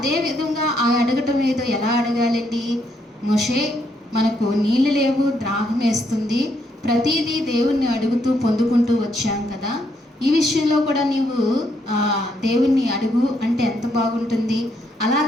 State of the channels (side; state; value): both; normal; correlation 0.75